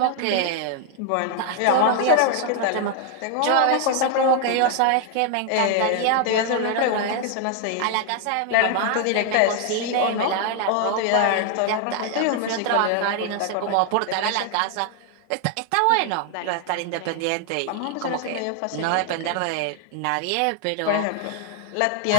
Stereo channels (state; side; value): different; both; correlation 0.00